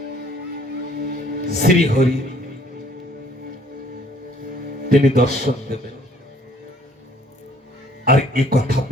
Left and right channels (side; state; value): both; normal; correlation 0.59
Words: শ্রী হরি তিনি দর্শন দেবেন। আর এ কথা